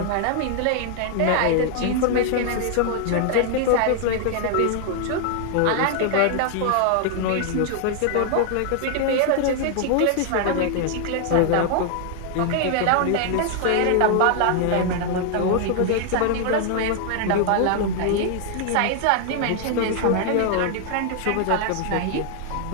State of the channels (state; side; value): different; both; correlation 0.00